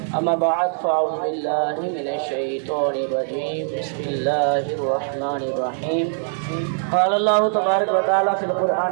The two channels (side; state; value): left; silent; digital silence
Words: اما بعد فاعوذ باللہ من الشیطان الرجیم، بسم اللہ الرحمن الرحیم۔ قال اللہ تبارک و تعالی فی